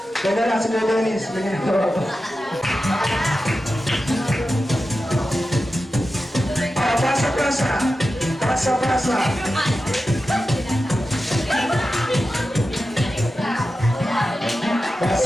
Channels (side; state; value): both; normal; correlation 0.92